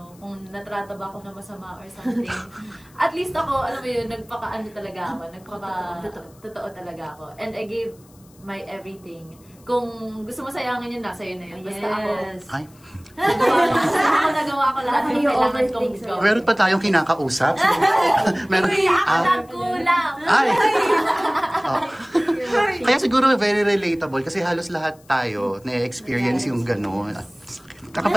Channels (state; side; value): noise; left; hiss, 28 dB below the sound